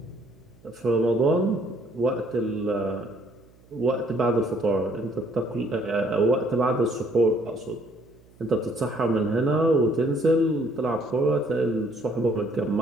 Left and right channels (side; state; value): right; noise; hum, 28 dB below the sound